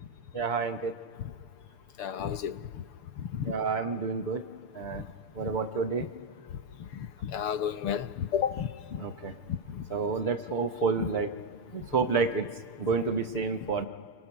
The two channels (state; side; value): late; right; 6.8 ms